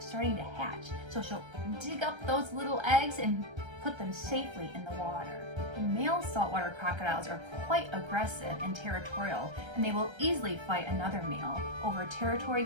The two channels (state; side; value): late; left; 1.3 ms